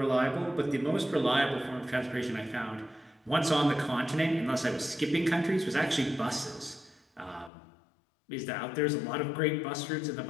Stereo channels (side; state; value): right; drops out; at 7.5 s